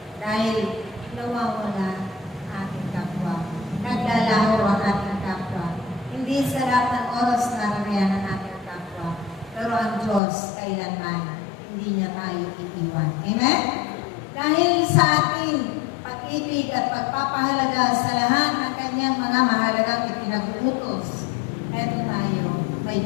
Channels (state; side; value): drops out; right; at 10.2 s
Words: dahil nawawala ating kapwa. Naglalaho ang ating kapwa. Hindi sa lahat ng oras nararayan ang ating kapwa. Pero ang Diyos kailanman hindi niya tayo iiwan. Amen? Dahil sa ating pag-ibig at pagpapahalaga sa lahat ng kanyang mga mahalagang ipinag-uutos, eto tayo, may